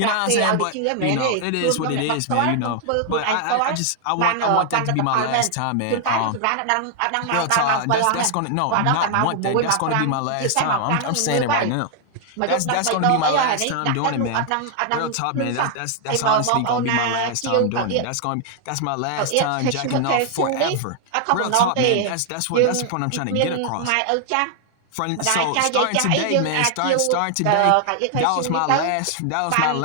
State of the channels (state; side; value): different; both; correlation 0.00